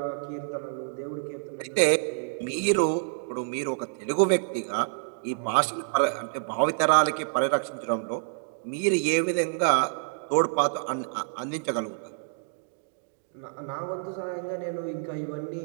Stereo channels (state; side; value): silent; left; digital silence